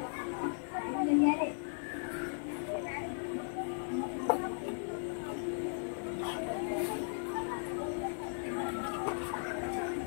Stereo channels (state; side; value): silent; right; digital silence